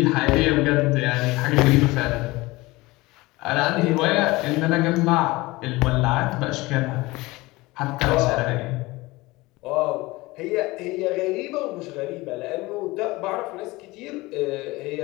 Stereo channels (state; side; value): quieter; right; 21.1 dB